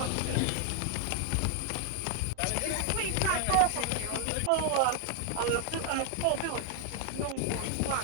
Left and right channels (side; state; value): both; different; correlation 0.00